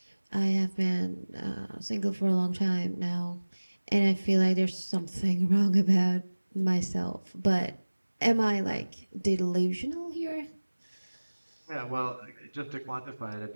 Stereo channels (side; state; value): both; inverted; correlation -1.00